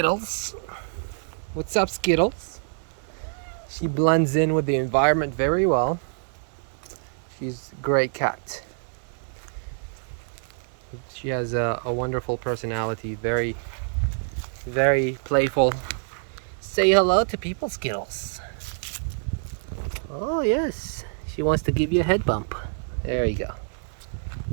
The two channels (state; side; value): silent; left; digital silence